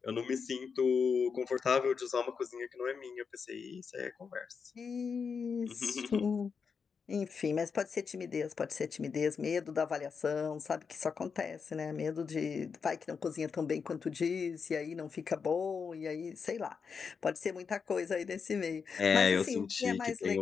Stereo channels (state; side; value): quieter; right; 5.8 dB